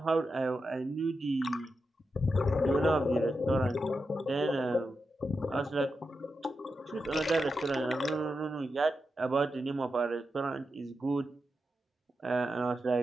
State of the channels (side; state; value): both; normal; correlation 0.88